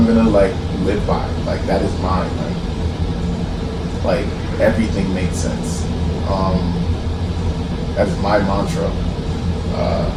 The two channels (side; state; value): both; identical; correlation 1.00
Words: gonna live by. Like, that is mine. Like everything makes sense. That is my mantra,